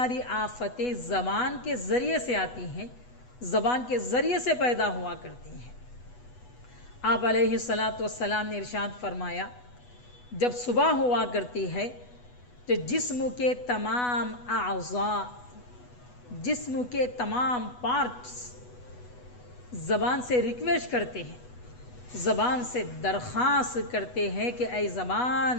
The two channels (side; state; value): right; late; 8.1 ms